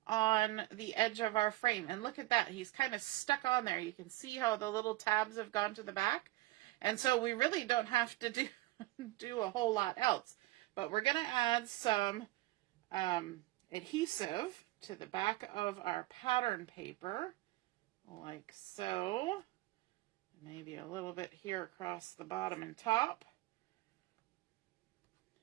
on the edge of our frame. And look at that. He's kind of stuck on there. You can see how the little tabs have gone to the back. And so we really don't have to do a whole lot else. But we're going to add some adhesive to the back of our pattern paper, like so. Maybe a little bit here across the bottom and top.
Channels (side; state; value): left; quieter; 18.5 dB